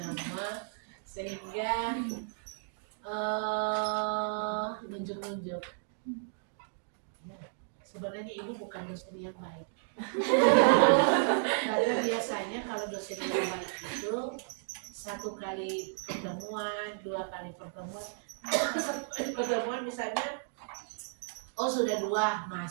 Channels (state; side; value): silent; left; digital silence